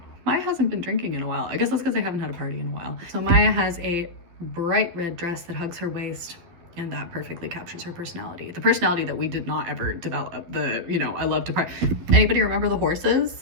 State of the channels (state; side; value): late; left; 12 ms